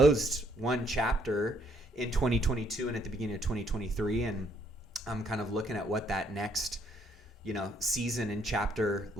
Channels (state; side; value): normal; both; correlation 0.68